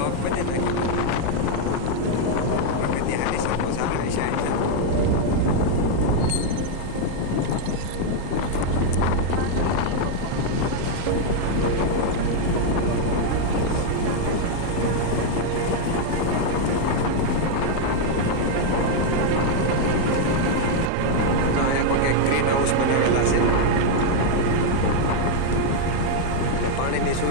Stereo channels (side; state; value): both; different; correlation 0.00